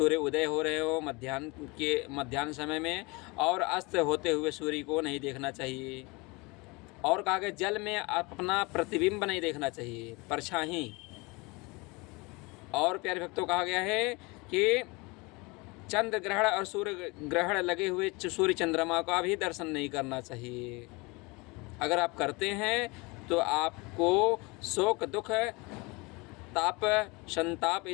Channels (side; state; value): right; quieter; 26.0 dB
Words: उदय हो रहे हो मध्याह्न समय में, और अस्त होते हुए सूर्य को नहीं देखना चाहिए। और कहा गया जल में अपना प्रतिबिंब नहीं देखना चाहिए, परछाई। और प्यारे भक्तों, कहा गया है कि चंद्र ग्रहण और सूर्य ग्रहण लगे हुए सूर्य चंद्रमा का भी दर्शन नहीं करना चाहिए। अगर आप करते हैं तो आपको शोक, दुख, ताप, संताप